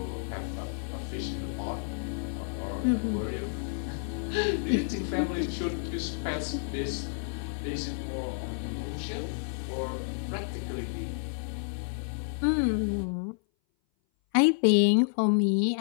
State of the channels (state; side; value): silent; right; 58 dB below the other